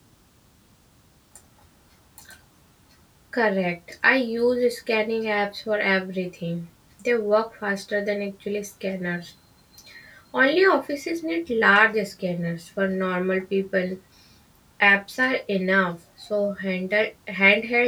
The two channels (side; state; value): both; identical; correlation 1.00